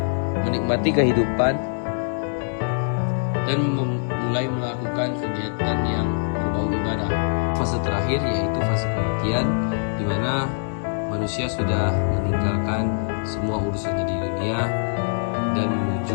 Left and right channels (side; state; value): right; silent; 60 dB below the other